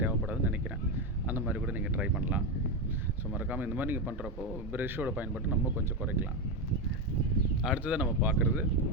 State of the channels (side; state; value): both; normal; correlation 0.11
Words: தேவைப்படாதுன்னு நினைக்கிறேன். அந்த மாதிரி கூட நீங்கள் ட்ரை பண்ணலாம். ஸோ மறக்காமல் இந்த மாதிரி நீங்கள் பண்ணுறப்போ ப்ரஷ்ஷோட பயன்பாட்டை நம்ம கொஞ்சம் குறைக்கலாம். அடுத்ததாக நம்ம பார்க்குறது